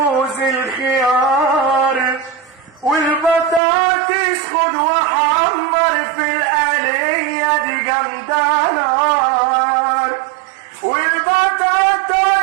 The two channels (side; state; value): left; drops out; at 3.6 s